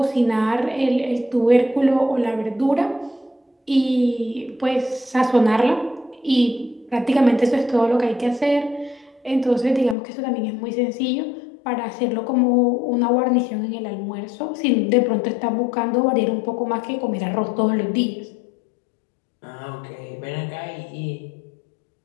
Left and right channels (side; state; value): right; drops out; at 10.0 s